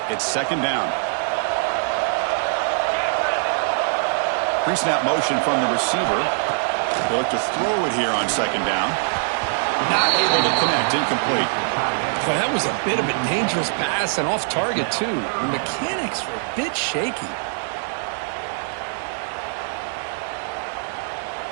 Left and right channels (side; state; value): left; silent; 57 dB below the other